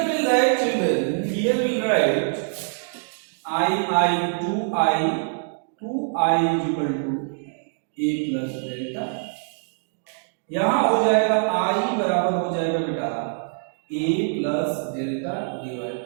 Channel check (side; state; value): left; silent; digital silence